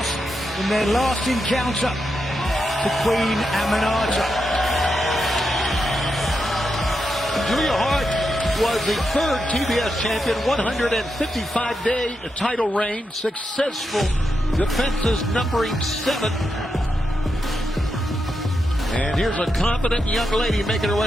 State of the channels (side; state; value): both; normal; correlation 0.85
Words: in their last encounter to Queen Aminata. Julia Hart was the third TBS champion, 155-day title reign, successful defenses numbering 7. And here's a confident young lady making her